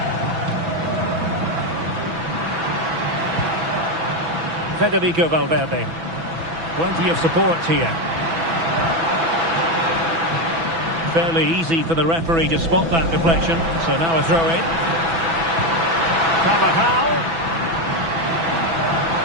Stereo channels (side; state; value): left; late; 6.0 ms